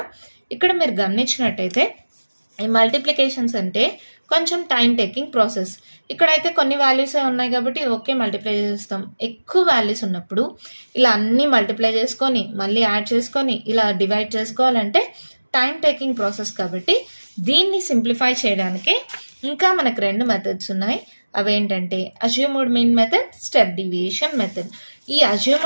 ఇక్కడ మీరు గమనించినట్టయితే ఈ మల్టిప్లికేషన్స్ అంటే కొంచెం టైం టేకింగ్ ప్రాసెస్. ఇక్కడైతే కొన్ని వాల్యూసే ఉన్నాయి కాబట్టి ఓకే మల్టిప్లై చేస్తాం. ఎక్కువ వాల్యూస్ ఉన్నప్పుడు ఇలా అన్నీ మల్టిప్లై చేసుకొని మళ్ళీ యాడ్ చేసుకొని ఇలా డివైడ్ చేసుకోవాలంటే టైం టేకింగ్ ప్రాసెస్ కాబట్టి దీన్ని సింప్లిఫై చేయడానికి ఇంకా మనకు 2 మెథడ్స్ ఉన్నాయి. అవేంటంటే assumed mean method, step deviation method. ఈ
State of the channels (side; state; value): both; inverted; correlation -1.00